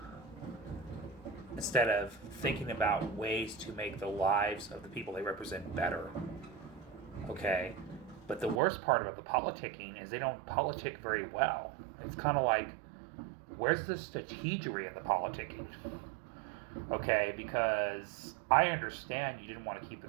instead of thinking about ways to make the lives of the people they represent better. Okay? But the worst part about the politicking is they don't politic very well. It's kind of like, where's the strategery in the politicking? Okay? Because I understand you didn't want to keep the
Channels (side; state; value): left; drops out; at 8.6 s